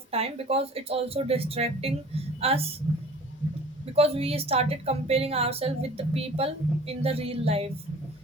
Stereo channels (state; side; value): normal; both; correlation 0.45